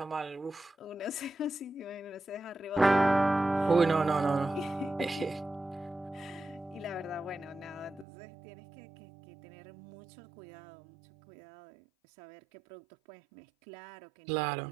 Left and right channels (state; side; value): drops out; left; at 8.1 s